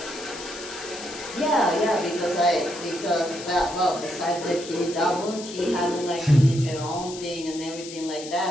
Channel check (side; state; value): left; noise; hiss, 12 dB below the sound